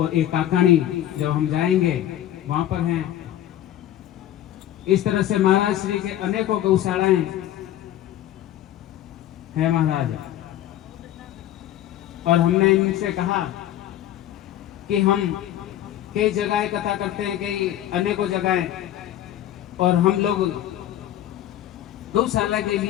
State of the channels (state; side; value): quieter; right; 12.4 dB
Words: एक काकाणी जब हम जाएंगे वहां पर हैं। इस तरह से महाराज श्री के अनेकों गौशालाएं हैं महाराज। और हमने इनसे कहा कि हम कई जगह कथा करते हैं, कई अनेकों जगह, और हम लोग गौशाला के